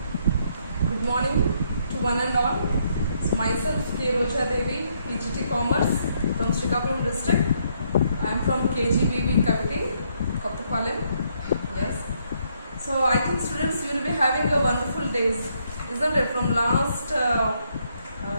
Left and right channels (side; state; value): both; inverted; correlation -0.73